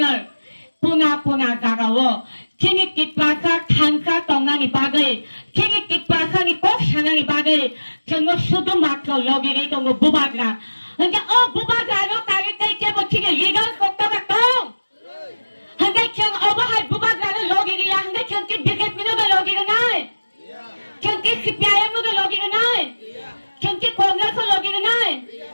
puna garawo. Kini tipaka kanka tonga ni bagay. Kini tipaka ni kok shanga ni bagay. Kino sudo makro logi rito ngo bubagra. Hanggang bubagra no kagit kay kebo kini legal kokta bakong. Hanggang kiyang obahay bubagra no logi riya. Hanggang kiyang bigat mo na logi na nai. Kiyang kipiyaya mo na logi na nai. Kiyang kongres mo logi na nai.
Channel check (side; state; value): both; inverted; correlation -1.00